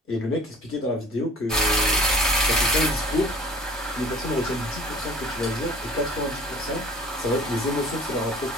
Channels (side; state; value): both; normal; correlation 0.48